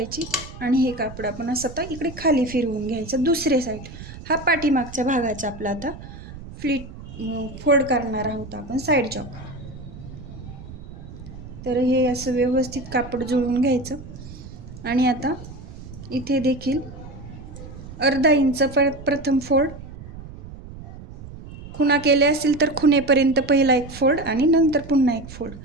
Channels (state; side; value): noise; right; rumble, 14 dB below the sound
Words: आणि हे कापड आपण असं आता इकडे खाली फिरवून घ्यायचं. दुसरे साईड हा पाठीमागच्या भागाचा आपला आता फोल्ड करणार आहोत आपण साईड जॉब. तर हे असं व्यवस्थित कापड जुळवून घ्यायचं. आणि आता इथे देखील अर्धा इंच प्रथम फोल्ड, खुणा केले असतील तर खुणेपर्यंत पहिला एक फोल्ड आणि नंतर पुन्हा एक फोल्ड.